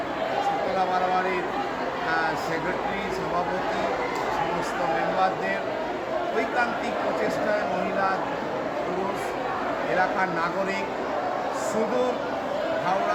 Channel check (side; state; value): both; identical; correlation 1.00